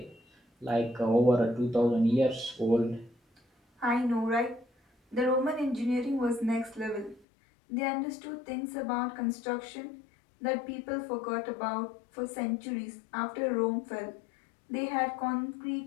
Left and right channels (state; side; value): drops out; right; at 7.2 s